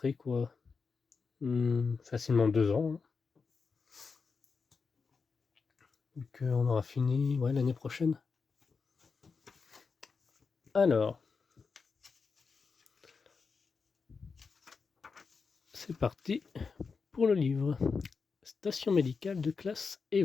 quoi facilement 2 ans. Hein. Vu qu'on aura fini l'année prochaine. Alors, c'est parti pour le livre. Station médicale de classe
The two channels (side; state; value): right; quieter; 5.1 dB